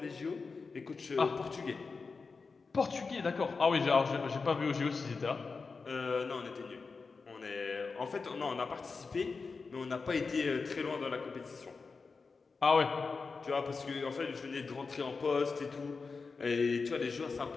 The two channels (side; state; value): right; quieter; 4.6 dB